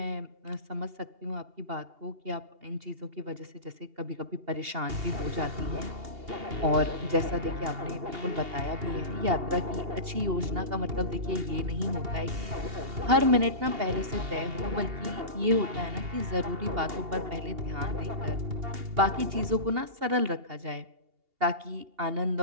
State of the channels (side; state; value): left; late; 2.8 ms